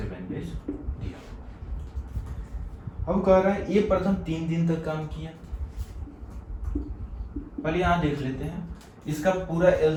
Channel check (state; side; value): identical; both; correlation 1.00